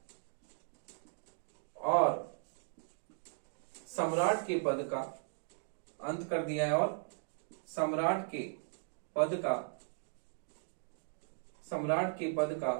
और सम्राट के पद का अंत कर दिया है, और सम्राट के पद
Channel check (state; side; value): silent; left; digital silence